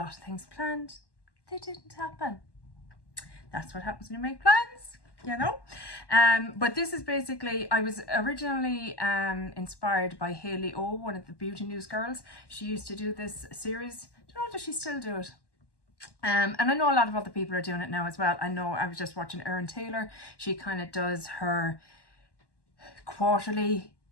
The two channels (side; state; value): right; late; 1.1 ms